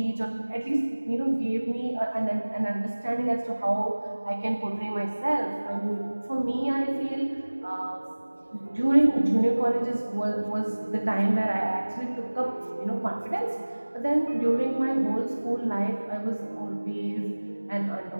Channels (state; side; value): inverted; both; correlation -1.00